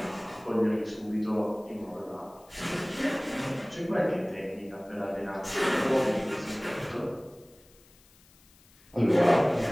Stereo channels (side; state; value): left; noise; hiss, 28 dB below the sound